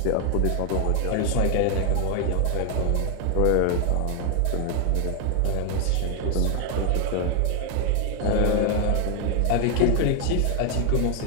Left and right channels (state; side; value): different; both; correlation 0.00